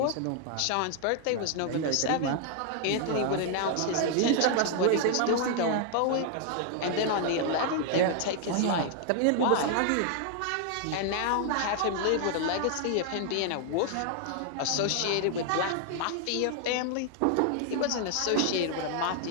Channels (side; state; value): both; different; correlation 0.00